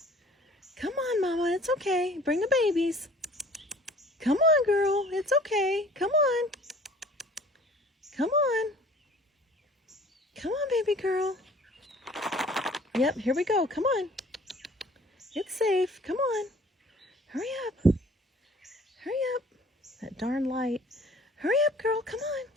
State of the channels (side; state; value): both; normal; correlation 0.51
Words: Come on, Mama. It's okay. Bring the babies. Come on, girl. It's okay. Come on. Come on. Come on, baby girl. Yep, here we go. Come on. It's safe. Come on. Hurry up. Hurry up. That darn light. Hurry up, girl. Come on.